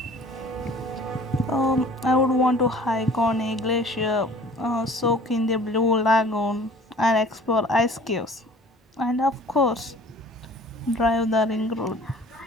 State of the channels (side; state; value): both; normal; correlation 0.49